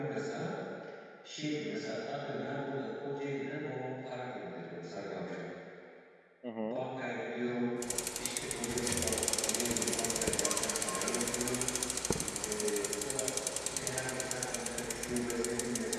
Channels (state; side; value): identical; both; correlation 1.00